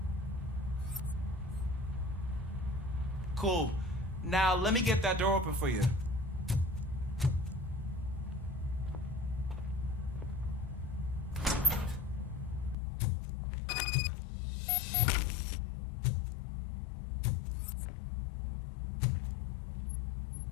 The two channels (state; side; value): drops out; right; at 12.8 s